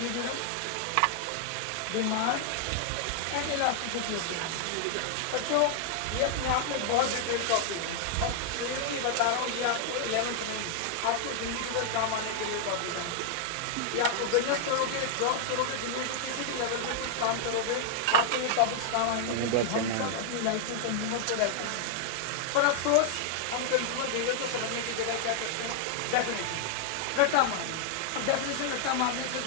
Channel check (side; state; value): both; different; correlation 0.00